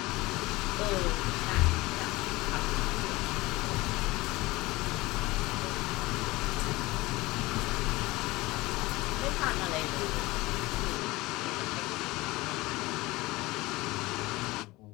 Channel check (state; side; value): quieter; right; 20.7 dB